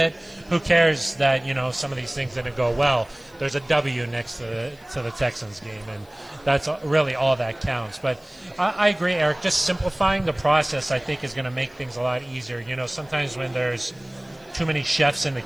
who cares that, some of these things didn't go well? There's a W next to the Texans game, and that's really all that counts. But I agree, Aric. Just simplifying the process, I think, is going to make things a lot easier. Sometimes when there's too many chefs in the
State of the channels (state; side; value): noise; left; hiss, 29 dB below the sound